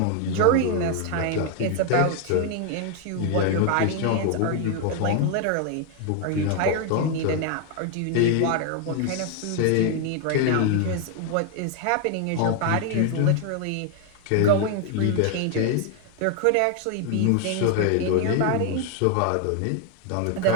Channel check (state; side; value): different; both; correlation 0.00